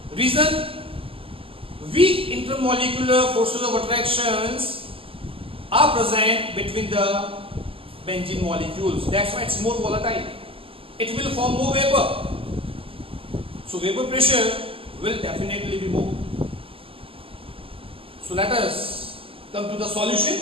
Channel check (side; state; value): left; late; 0.26 ms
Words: Reason: weak intermolecular forces of attractions are present between the benzene molecules. That's why it's more volatile. It will form more vapor. So vapor pressure will definitely be more. So let us come to the solution.